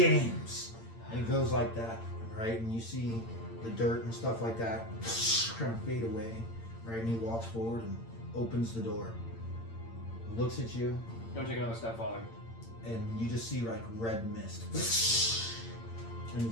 And it goes like that, right? And you see the dirt and stuff like that kind of fade away, right? And he walks forward and opens the door, looks at you, Don't take another step, Father. and you just see like red mist. And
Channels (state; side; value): late; right; 8.8 ms